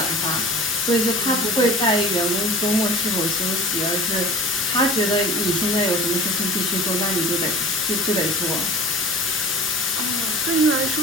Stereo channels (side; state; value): both; normal; correlation 0.41